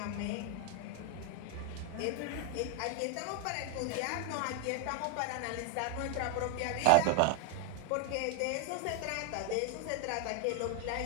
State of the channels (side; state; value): both; different; correlation 0.01